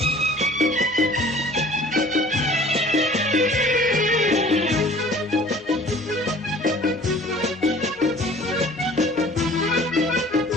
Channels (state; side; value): normal; both; correlation 0.49